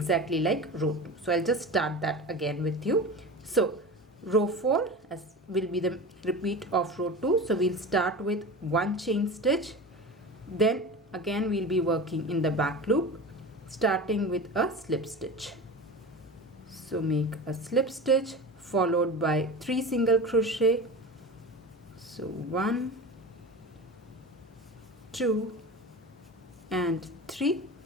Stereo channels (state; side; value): normal; both; correlation 0.31